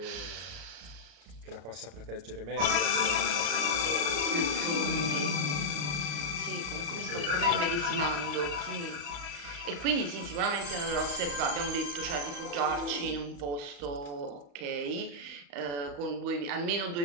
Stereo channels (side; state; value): left; late; 35 ms